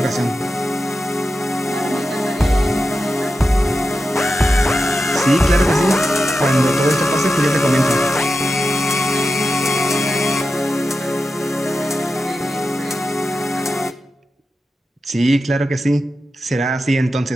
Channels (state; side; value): normal; both; correlation 0.90